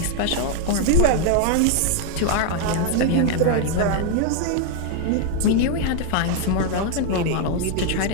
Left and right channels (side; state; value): both; different; correlation 0.00